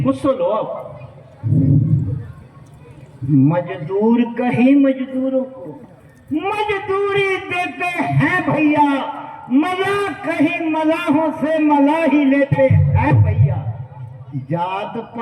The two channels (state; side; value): identical; both; correlation 1.00